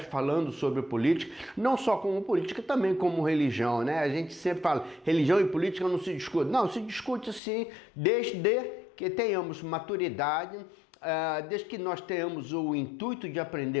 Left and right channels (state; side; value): drops out; right; at 7.4 s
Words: falando sobre política, não só como política, também como religião, né? A gente sempre fala, religião e política não se discute. Não, se discute sim, desde que tenhamos maturidade, desde que nós tenhamos o intuito de